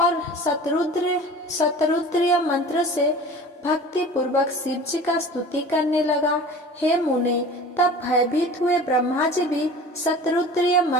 और शतरुद्रीय मंत्र से भक्ति पूर्वक शिव जी का स्तुति करने लगा। हे मुने, तब भयभीत हुए ब्रह्मा जी भी शतरुद्रीय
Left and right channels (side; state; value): both; normal; correlation 0.40